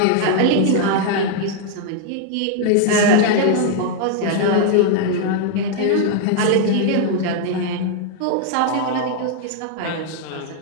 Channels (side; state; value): both; different; correlation 0.00